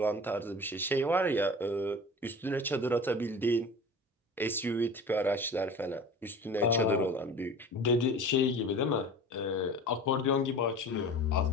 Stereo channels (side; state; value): both; normal; correlation 0.39